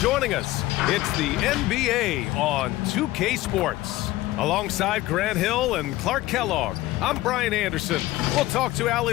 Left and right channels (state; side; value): quieter; right; 17.1 dB